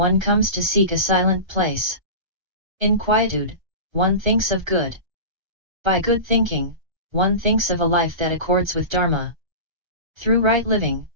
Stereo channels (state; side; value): late; left; 1.3 ms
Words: comes to seek a silent place. In quietude, one thinks of good. By good thinking, one thinks of a life that accords with Dharma. Through right living,